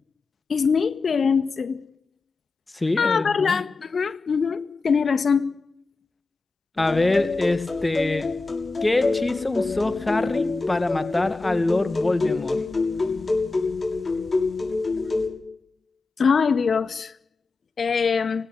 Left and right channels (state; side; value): quieter; right; 3.8 dB